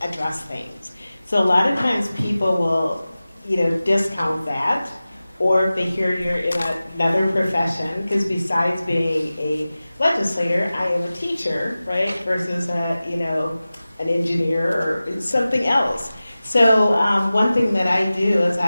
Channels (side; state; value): both; inverted; correlation -0.96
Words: address things. So a lot of times people will, discount that, or if they hear you're in another profession, because besides being a legislator, I am a teacher, right, versus an engineer or something else. So one thing that I do is